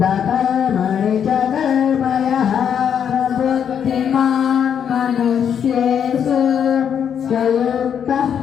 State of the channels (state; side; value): quieter; right; 8.2 dB